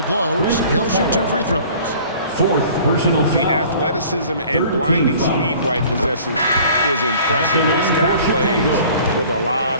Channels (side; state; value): both; inverted; correlation -0.49